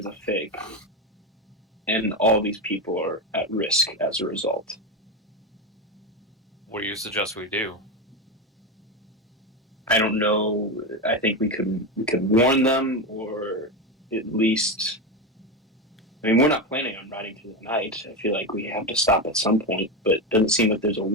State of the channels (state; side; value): normal; both; correlation 0.15